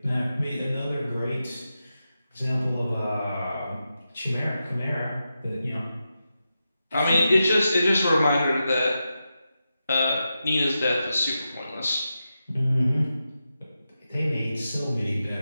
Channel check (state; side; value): inverted; both; correlation -0.89